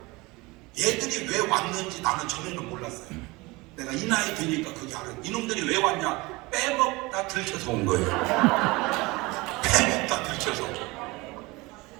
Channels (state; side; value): quieter; left; 23.3 dB